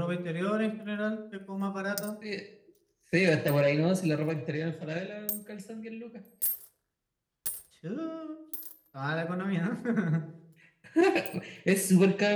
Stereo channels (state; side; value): identical; both; correlation 1.00